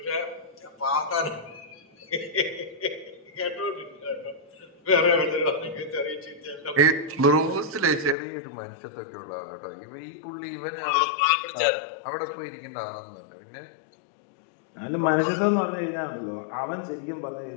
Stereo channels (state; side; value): drops out; right; at 8.2 s